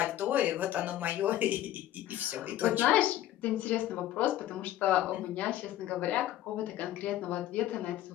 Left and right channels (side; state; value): right; quieter; 13.3 dB